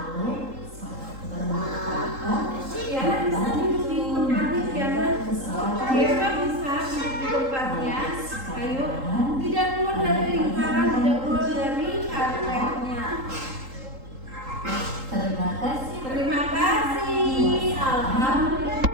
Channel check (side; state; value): left; late; 3.8 ms